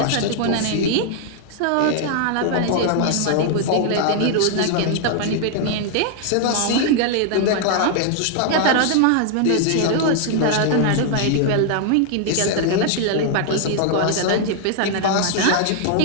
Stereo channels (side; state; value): both; different; correlation 0.00